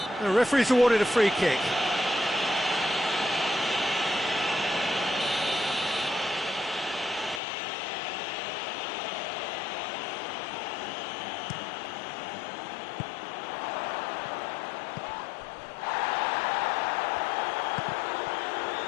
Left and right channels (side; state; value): right; drops out; at 7.4 s